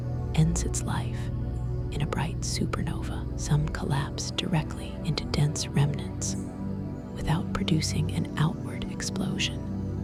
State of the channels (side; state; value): both; identical; correlation 1.00